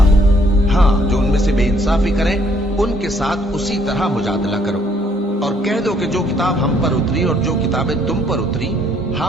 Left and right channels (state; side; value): normal; both; correlation 0.65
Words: ہو۔ ہاں، جو ان میں سے بے انصافی کریں ان کے ساتھ اسی طرح مجادلہ کرو، اور کہہ دو کہ جو کتاب ہم پر اتری اور جو کتابیں تم پر اتری